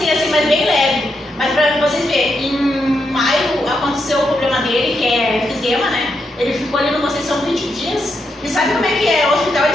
assim, mas bem leve. Mas pra vocês verem, em maio aconteceu o problema dele, que é efizema, né? Ele ficou ali no Conceição 20 dias. E sabe como é que é? O hospital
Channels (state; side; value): normal; both; correlation 0.82